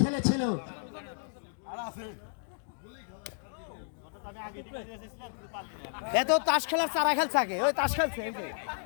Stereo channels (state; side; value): silent; right; digital silence